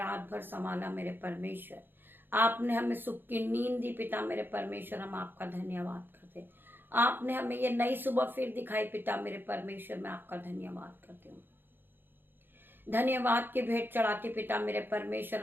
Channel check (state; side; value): late; left; 0.098 ms